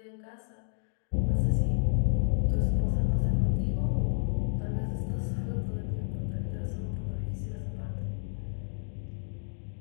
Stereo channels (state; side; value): silent; right; digital silence